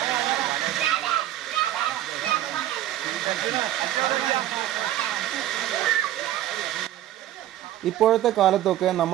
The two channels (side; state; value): left; quieter; 13.1 dB